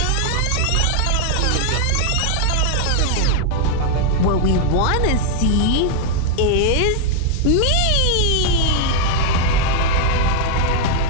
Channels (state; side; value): different; both; correlation 0.00